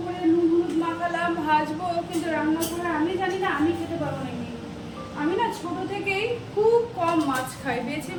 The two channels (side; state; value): both; identical; correlation 1.00